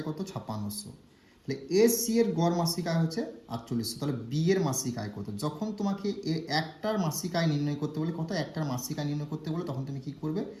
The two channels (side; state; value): both; identical; correlation 1.00